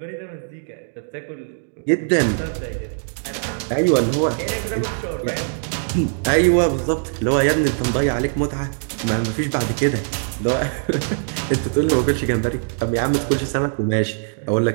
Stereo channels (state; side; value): silent; left; digital silence